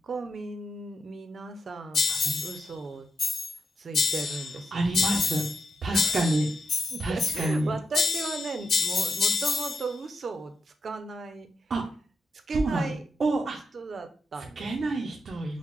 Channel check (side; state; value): both; normal; correlation 0.85